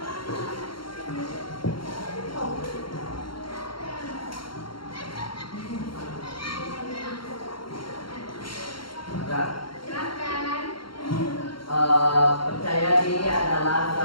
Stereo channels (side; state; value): right; late; 0.73 ms